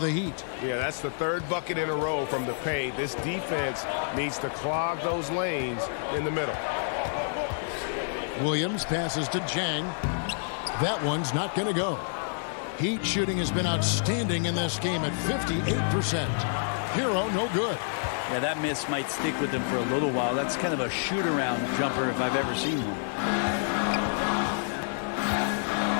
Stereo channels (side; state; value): right; silent; digital silence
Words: Heat. Yeah, that's the third bucket in a row from the paint. This defense needs to clog those lanes in the middle. Williams passes to Jang. That one's not going to go. Heat shooting has been outstanding in this game at 58%. Hero, no good. Yeah, that miss might stick with him for a little while. That's kind of a shoot-around jumper if I've ever seen one.